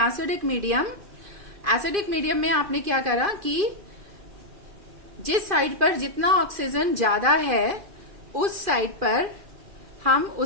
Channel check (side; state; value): left; late; 2.4 ms